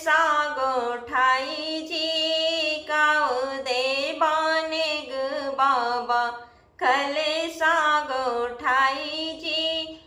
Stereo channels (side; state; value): both; identical; correlation 1.00